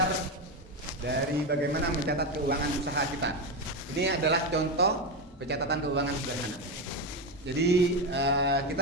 dari bagaimana mencatat keuangan usaha kita. Ini adalah contoh pencatatan keuangan sederhana. Jadi kita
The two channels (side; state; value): both; normal; correlation 0.13